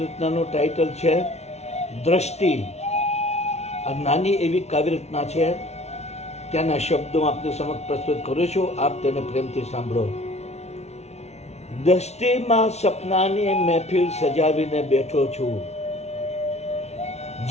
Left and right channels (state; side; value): late; right; 0.31 ms